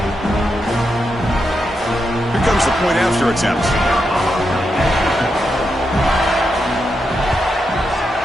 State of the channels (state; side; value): normal; both; correlation 0.85